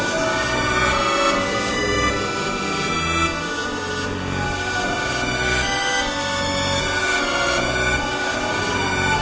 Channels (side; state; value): both; identical; correlation 1.00